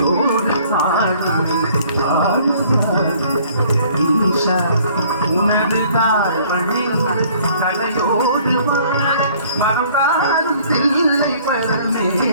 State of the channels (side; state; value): both; inverted; correlation -0.57